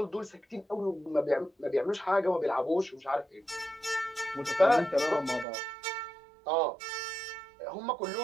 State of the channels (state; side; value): drops out; left; at 5.5 s